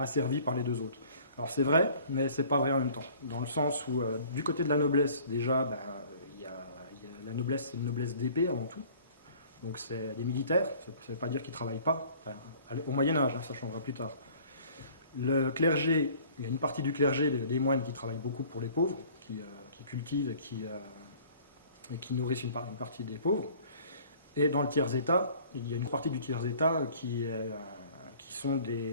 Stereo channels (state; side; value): inverted; both; correlation -0.52